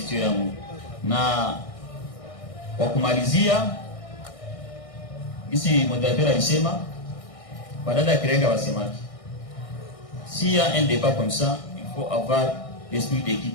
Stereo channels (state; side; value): late; right; 1.6 ms